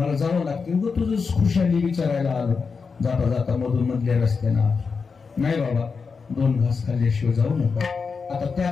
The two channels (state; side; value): quieter; right; 5.2 dB